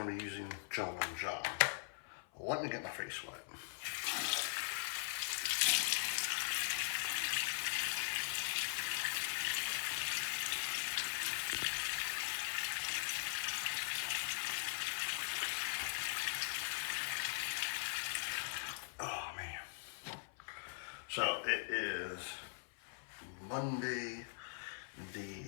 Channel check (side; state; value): right; silent; 50 dB below the other